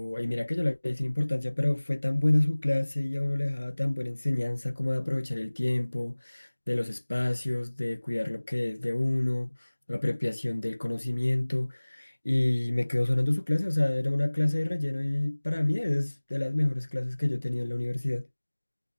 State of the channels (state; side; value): inverted; both; correlation -1.00